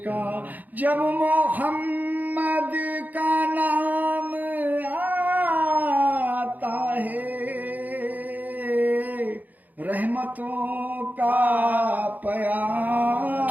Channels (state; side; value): late; left; 0.082 ms